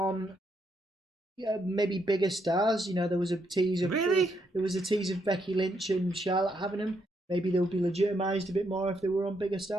maybe bigger stars. There was a tease of Becky Lynch and Charlotte having them. Maybe they would be legitimised a bit more if they were on bigger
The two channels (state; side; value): normal; both; correlation 0.77